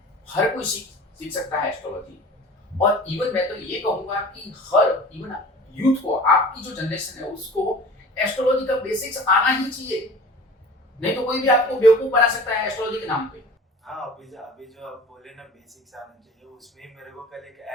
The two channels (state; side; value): normal; both; correlation 0.42